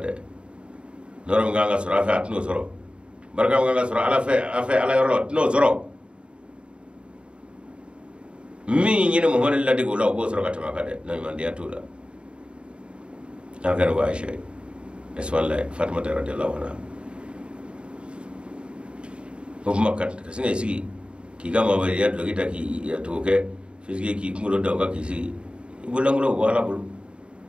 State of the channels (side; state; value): left; late; 0.055 ms